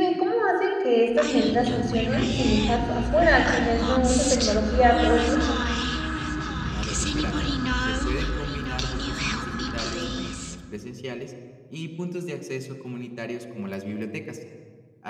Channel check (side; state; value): both; identical; correlation 1.00